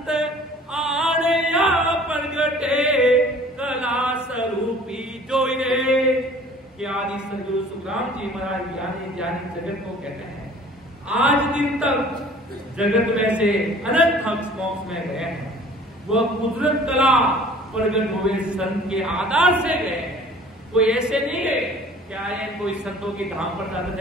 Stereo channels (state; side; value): normal; both; correlation 0.50